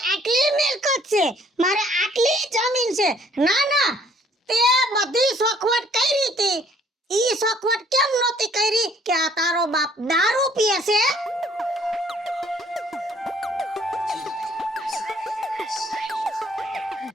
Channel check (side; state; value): both; normal; correlation 0.61